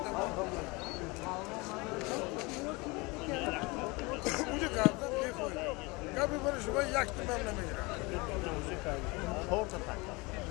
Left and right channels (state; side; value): quieter; right; 25.7 dB